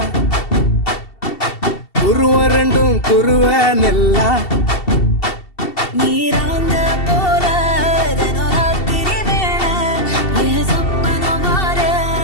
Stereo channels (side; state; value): right; late; 2.7 ms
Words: குருவ ரெண்டும் குருவ நெல்லா நீராங்க போல ராத்திரி வேண என் சொப்பனம் மாற